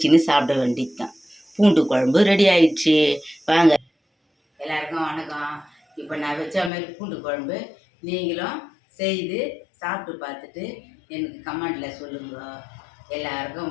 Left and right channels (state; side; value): drops out; right; at 6.7 s